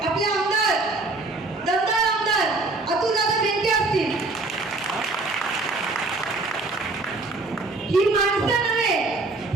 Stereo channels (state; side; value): quieter; left; 3.3 dB